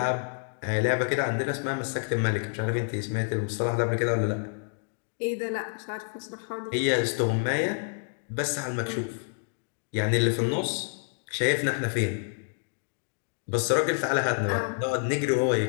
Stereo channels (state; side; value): silent; right; digital silence